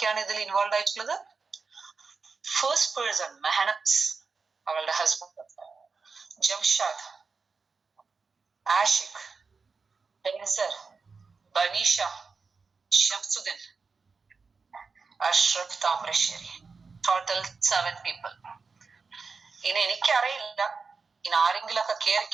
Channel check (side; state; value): left; quieter; 4.7 dB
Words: ഇതിൽ ഇൻവോൾവ് ആയിട്ടുള്ളത്? ഫസ്റ്റ് പേഴ്സൺ മെഹനസ്, അവളുടെ husband Jamshad, Ashiq, Benzer, Banisha, Shamsuddin, Ashraf Thamarassery. Total 7 people. ഇനി എനിക്കറിയില്ല ഇനി ആരെങ്കിലൊക്കെ